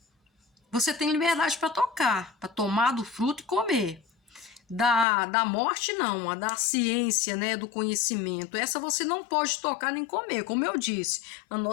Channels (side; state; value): right; drops out; at 5.1 s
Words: você tem liberdade para tocar, para tomar do fruto e comer. Da morte, não, a da ciência, né, do conhecimento. Essa você não pode tocar nem comer, como eu disse. A